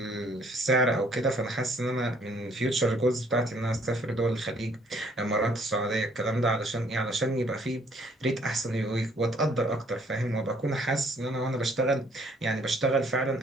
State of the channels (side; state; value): both; normal; correlation 0.62